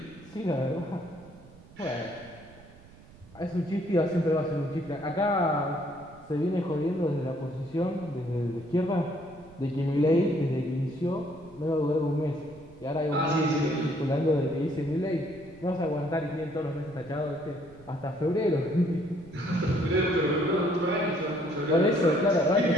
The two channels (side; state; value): right; noise; rumble, 22 dB below the sound